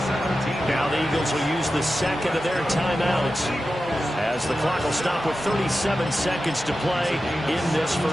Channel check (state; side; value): normal; both; correlation 0.92